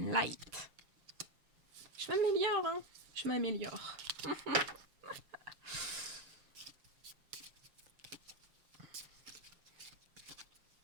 light. Je m'améliore, hein. Je m'améliore.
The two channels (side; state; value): left; late; 6.6 ms